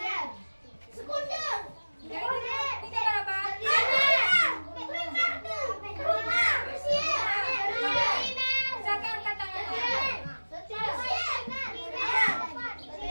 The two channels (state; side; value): inverted; both; correlation -1.00